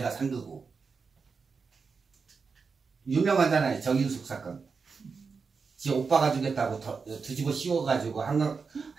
산 거고. 유명하잖아요. 정인숙 사건. 지 오빠가 주겠다고 뒤집어 씌워가지고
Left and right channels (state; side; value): quieter; left; 5.1 dB